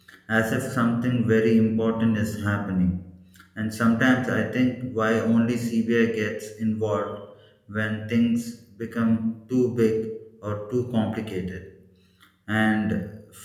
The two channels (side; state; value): both; identical; correlation 1.00